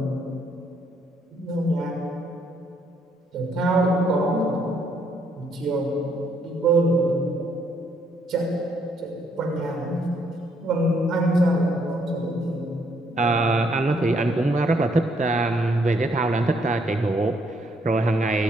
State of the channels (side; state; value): both; normal; correlation 0.71